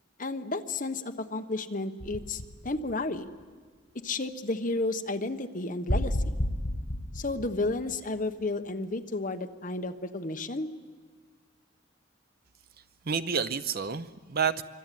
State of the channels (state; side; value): normal; both; correlation 0.34